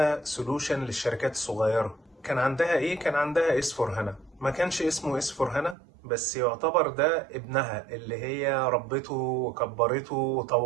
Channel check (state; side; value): drops out; left; at 5.8 s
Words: سولوشن للشركات الصغيرة. كان عندها ايه؟ كان عندها S/4HANA. ما كانش اسمه S/4HANA، بس يعتبر ده ابنها اللي هي ربته وكبرته